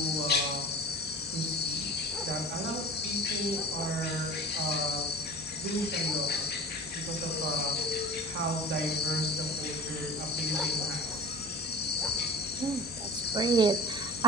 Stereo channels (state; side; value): normal; both; correlation 0.40